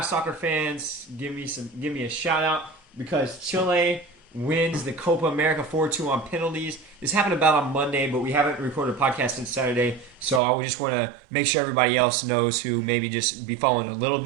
fans, give me a shout out because Chile wins the Copa America 4-2 on penalties. This happened about on Monday, but we haven't recorded a podcast since Saturday, so I just want to make sure everybody else knows who maybe just be following a little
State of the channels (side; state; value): left; drops out; at 10.4 s